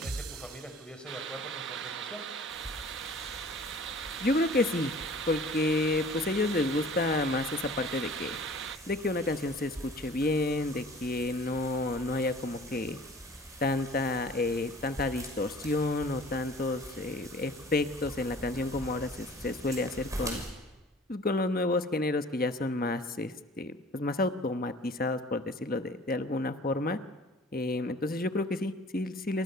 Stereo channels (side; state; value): both; normal; correlation 0.47